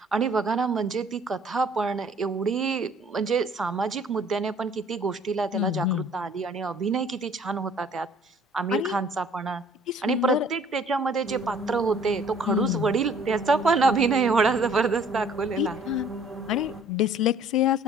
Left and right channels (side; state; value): both; normal; correlation 0.55